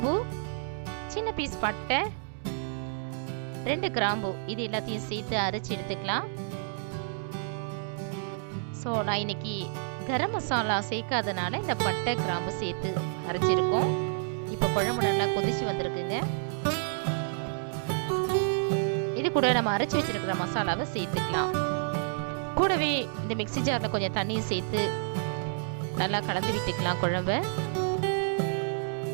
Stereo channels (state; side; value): silent; left; digital silence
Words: சின்ன பீஸ் பட்டை, 2 கிராம்பு, இது எல்லாத்தையும் சேர்த்து அரைச்சி எடுத்துக்கலாம். ஸோ நான் இன்னைக்கு கரம் மசாலா சேர்க்காதனால இந்த பட்டை கிராம்பு சேர்த்து அரைச்சிருக்கோம். இப்போ குழம்பு நல்லா கொதிச்சு வந்திருக்குங்க. இது கூட நம்ம அரைச்சி வச்சிருக்கிற மசாலாவை சேர்த்துக்கலாம். கூடவே இந்த மிக்ஸி ஜாரில் கொஞ்சம் தண்ணியும் சேர்த்து நல்லா கலந்து விட்டுக்கலாம் குழம்பை.